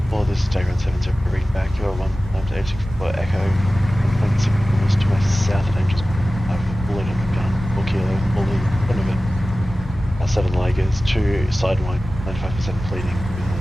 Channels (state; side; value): normal; both; correlation 0.96